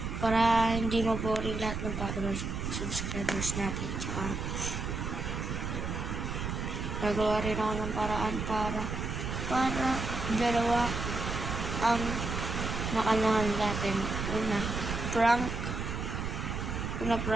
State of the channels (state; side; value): noise; right; rumble, 3 dB below the sound